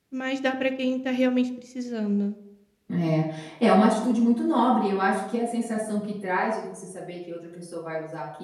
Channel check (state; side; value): identical; both; correlation 1.00